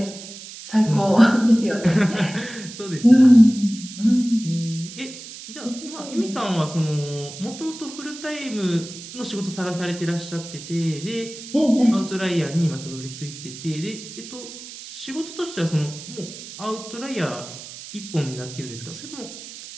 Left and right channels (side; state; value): right; noise; hiss, 13 dB below the sound